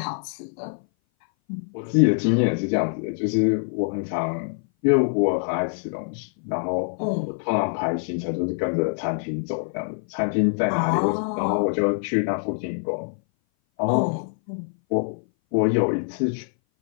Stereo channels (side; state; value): right; silent; 58 dB below the other